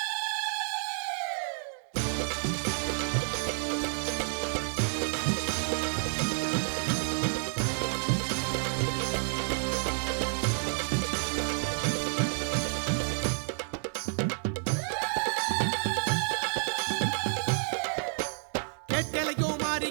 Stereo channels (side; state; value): left; silent; 58 dB below the other